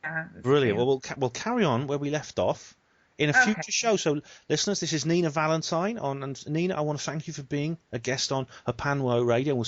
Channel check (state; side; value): identical; both; correlation 1.00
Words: Brilliant. Well, we'll carry on where we left off in a future show. So, listeners, this is Nina Valentine and Nina, I want to thank you for being a guest on Hapanwo Radio. We'll